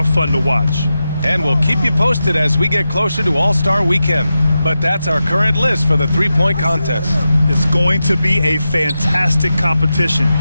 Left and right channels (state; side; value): inverted; both; correlation -0.90